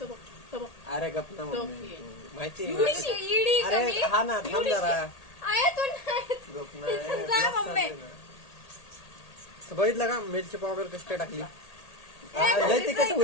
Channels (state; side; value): late; right; 1.8 ms